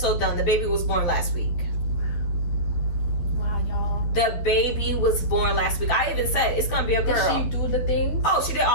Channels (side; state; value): right; late; 12 ms